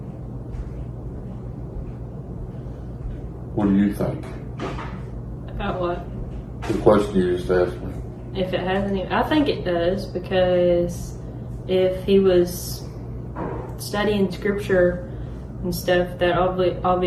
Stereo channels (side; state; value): both; identical; correlation 1.00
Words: What do you think? About what? The question you just asked me. If it has any, I think it does, because if he was studying scripture and stuff, that